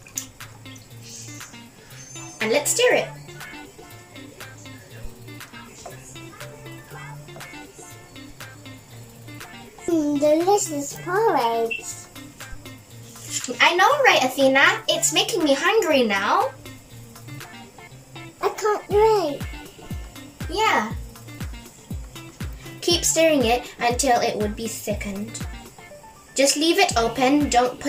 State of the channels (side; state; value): both; identical; correlation 1.00